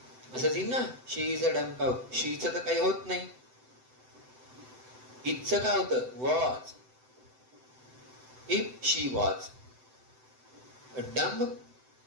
असं येईल ना. शी इज अ डंब काऊ. शीचं तर काही होत नाही. इथचं काय होतं? Was. If she was a dumb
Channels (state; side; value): late; left; 7.9 ms